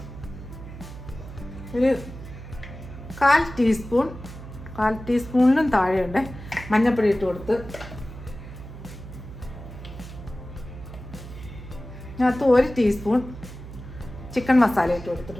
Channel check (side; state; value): right; noise; hum, 13 dB below the sound